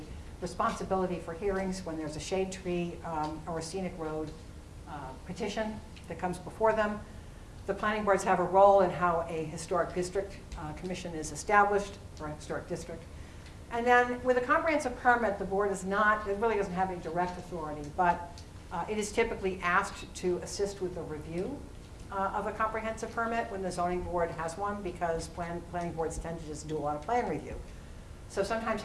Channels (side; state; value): both; identical; correlation 1.00